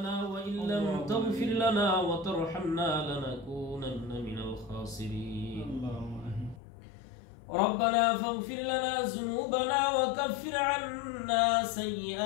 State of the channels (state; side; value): drops out; right; at 6.6 s